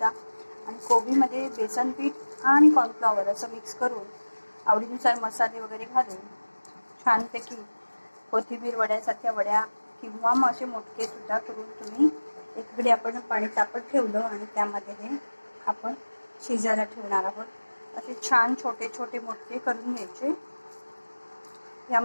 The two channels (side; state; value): both; inverted; correlation -1.00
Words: आणि कोबीमध्ये बेसन पीठ आणि कॉर्नफ्लॉवर असं मिक्स करून आवडीनुसार मसाले वगैरे घालून छानपैकी कोथिंबीर वड्यासारख्या वड्या किंवा मग असे मोठे सुद्धा करून तुम्ही एकीकडे आपण पाणी तापत ठेवलं आणि त्यामध्ये हे आपण शिजायला ठेवणार आहोत. असे छान छोटे छोटे मोठे करून घ्यायचे.